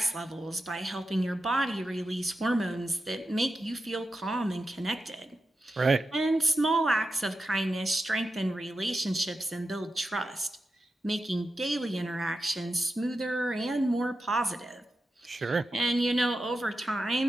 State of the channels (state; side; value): normal; both; correlation 0.90